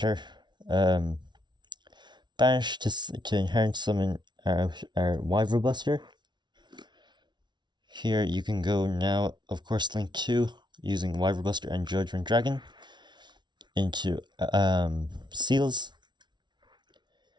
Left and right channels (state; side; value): late; left; 0.21 ms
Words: Banish to inherent summon our Wyvern Buster. Here you can go now, of course, link 2 using Wyvern Buster and Judgment Dragon into Seals.